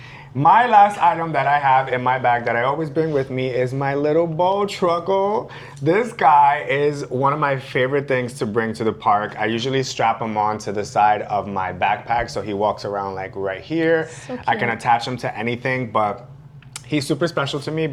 my last item that I have in my bag that I always bring with me is my little bow truckle. This guy is one of my favorite things to bring to the park. I usually strap him on to the side of my backpack so he walks around like right here. So I can cute. attach him to anything, but he's super special to me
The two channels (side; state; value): both; identical; correlation 1.00